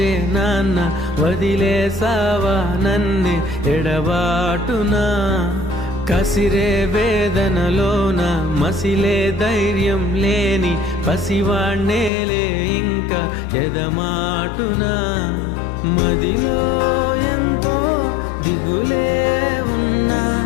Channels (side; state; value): right; drops out; at 12.1 s